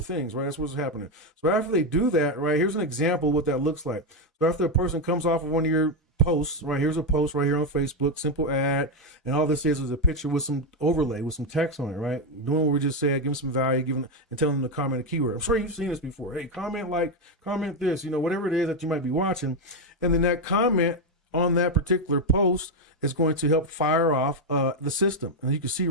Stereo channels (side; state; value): both; normal; correlation 0.07